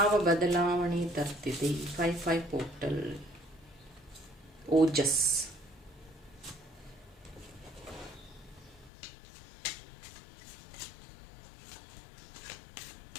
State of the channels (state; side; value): drops out; right; at 8.9 s